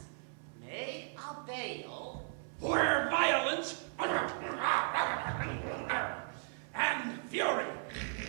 may avail Where violence and fury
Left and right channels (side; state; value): left; silent; 54 dB below the other